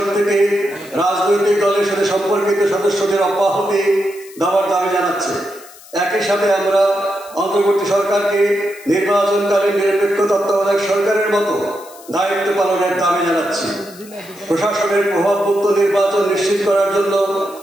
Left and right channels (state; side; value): noise; left; hiss, 21 dB below the sound